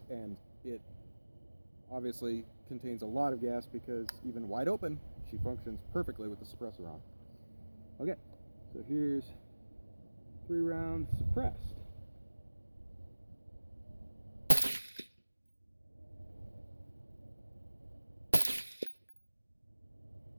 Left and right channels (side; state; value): both; inverted; correlation -1.00